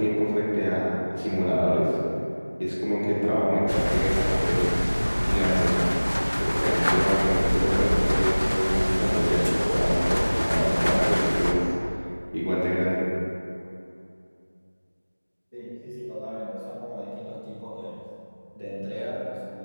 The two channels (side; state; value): both; inverted; correlation -1.00